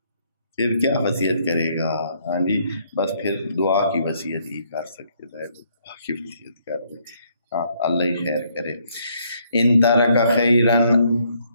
پھر کیا وصیت کرے گا؟ ہاں جی، بس پھر دعا کی وصیت ہی کر سکتے تھے، دعا کی وصیت کر دے، ہاں، اللہ ہی خیر کرے۔ ان ترک خیرن،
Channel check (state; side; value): inverted; both; correlation -0.69